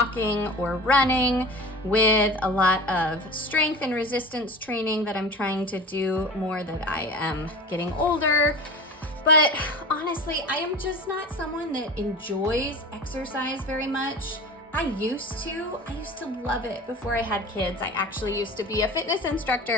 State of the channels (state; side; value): normal; both; correlation 0.35